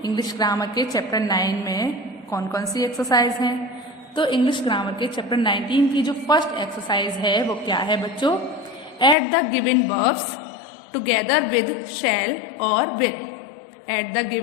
इंग्लिश ग्रामर के चैप्टर 9 में कौन कौन सी एक्सरसाइज हैं। तो इंग्लिश ग्रामर के चैप्टर 19 की जो फर्स्ट एक्सरसाइज है वो क्या है बच्चों? Add the given verbs together with shall और will. Add the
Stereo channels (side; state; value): right; drops out; at 9.2 s